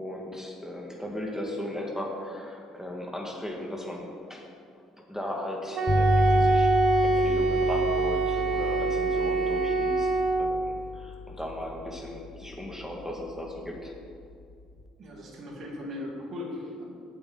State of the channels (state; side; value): normal; both; correlation 0.71